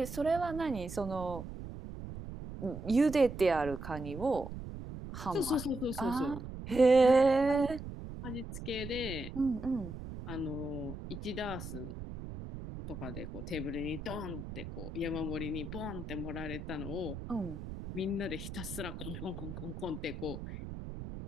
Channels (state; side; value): noise; right; rumble, 9 dB below the sound